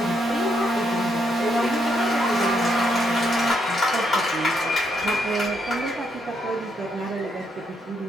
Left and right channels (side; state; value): both; normal; correlation 0.76